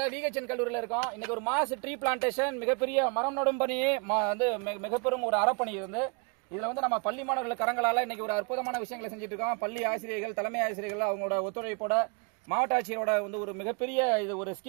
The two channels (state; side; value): quieter; left; 34.0 dB